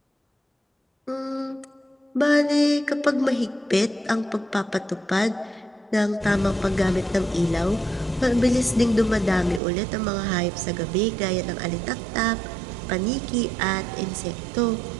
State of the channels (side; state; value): left; drops out; at 9.6 s